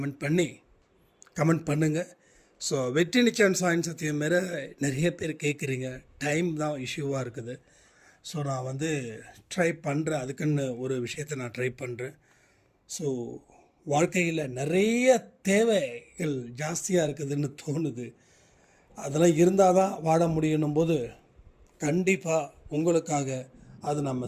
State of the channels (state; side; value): identical; both; correlation 1.00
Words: பண்ணுங்கள். ஸோ வெற்றி நிச்சயம் சாயின் சத்தியம் மாரி நிறைய பேர் கேட்குறீங்க. டைம் தான் இஷ்யூவாக இருக்குது. ஸோ நான் ட்ரை பண்ணுறேன். அதுக்குன்னு ஒரு விஷயத்தை நான் ட்ரை பண்ணுறேன். ஸோ வாழ்க்கையில் நிறைய தேவைகள் ஜாஸ்தியாக இருக்குதுன்னு தோணுது. அதெல்லாம் இருந்தால் தான் வாழ முடியணும் போது கண்டிப்பாக உங்களுக்காக அது நம்ம